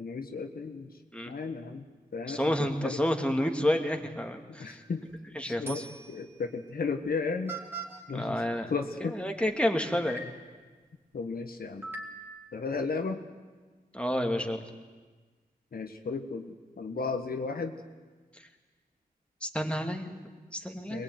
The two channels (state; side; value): normal; both; correlation 0.77